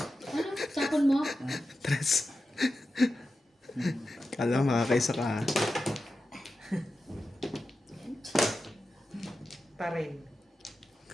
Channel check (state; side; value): normal; both; correlation 0.91